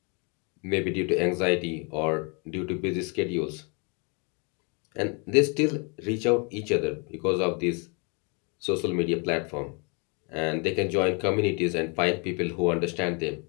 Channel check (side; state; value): right; quieter; 33.6 dB